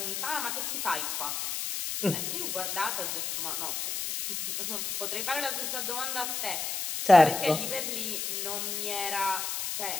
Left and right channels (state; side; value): noise; left; hiss, 2 dB below the sound